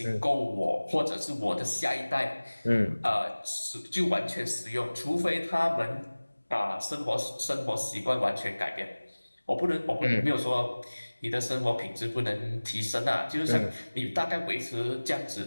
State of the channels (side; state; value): both; inverted; correlation -1.00